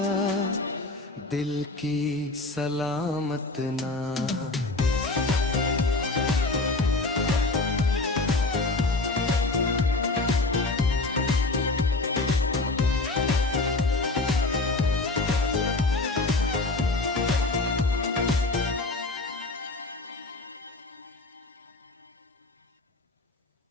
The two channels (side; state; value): right; quieter; 3.2 dB